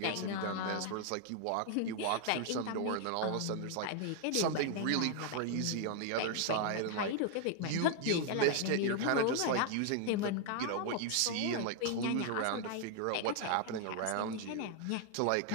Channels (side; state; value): both; different; correlation 0.00